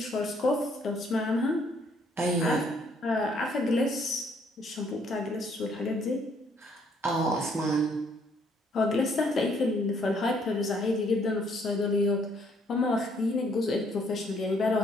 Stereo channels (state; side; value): normal; both; correlation 0.67